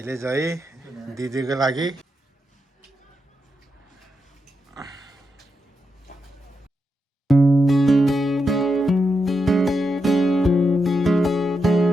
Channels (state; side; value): normal; both; correlation 0.85